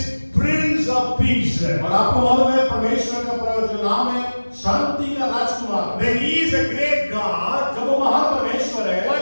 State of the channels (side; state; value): both; inverted; correlation -1.00